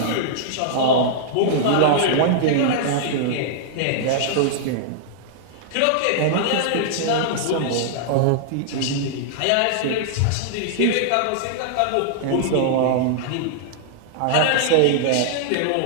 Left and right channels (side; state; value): both; different; correlation -0.01